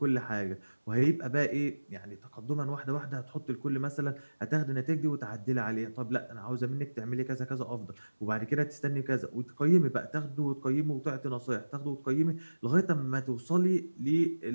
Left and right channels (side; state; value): both; inverted; correlation -1.00